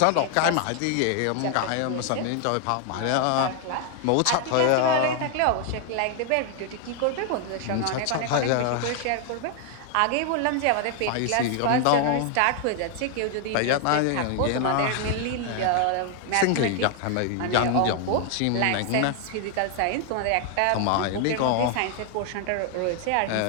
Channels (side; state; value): both; different; correlation 0.00